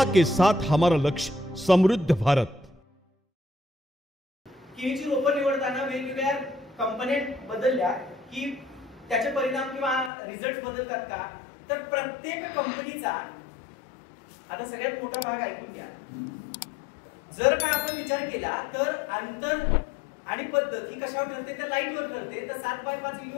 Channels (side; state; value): right; drops out; at 10.1 s